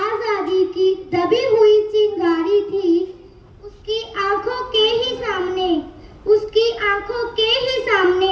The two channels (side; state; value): both; identical; correlation 1.00